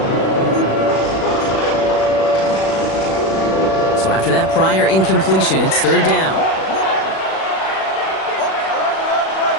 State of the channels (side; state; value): right; late; 36 ms